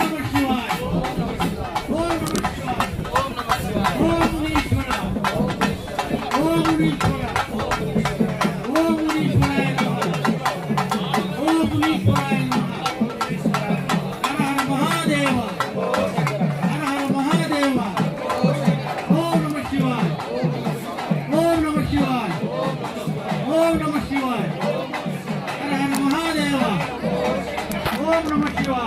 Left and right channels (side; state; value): both; identical; correlation 1.00